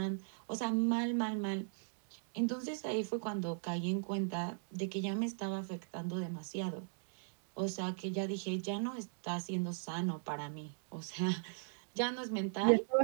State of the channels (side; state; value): left; silent; digital silence